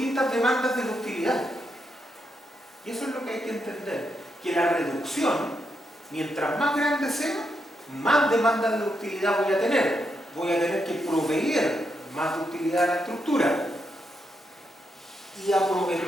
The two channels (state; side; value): normal; both; correlation 0.81